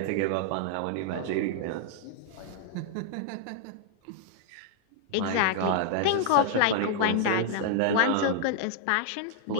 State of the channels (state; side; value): different; both; correlation -0.01